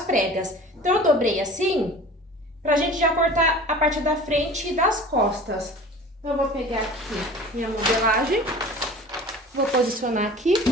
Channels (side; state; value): both; normal; correlation 0.41